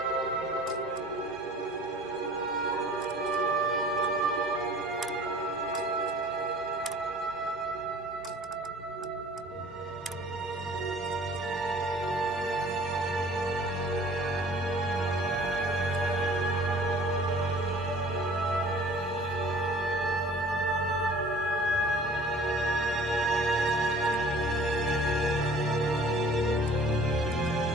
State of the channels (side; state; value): both; normal; correlation 0.49